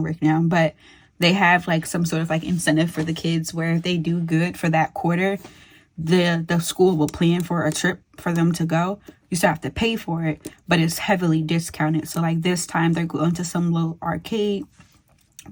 now, but they have like some sort of like incentive for the kids where if they do good for that quarter, the school will plan for a trip for them to go. You still have to pay for it, but it's heavily discounted. So like this time they're going to some little arcade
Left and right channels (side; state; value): both; identical; correlation 1.00